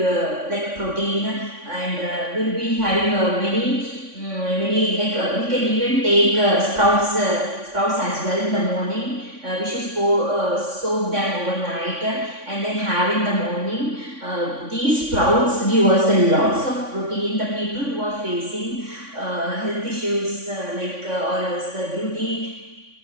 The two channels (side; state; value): left; late; 3.5 ms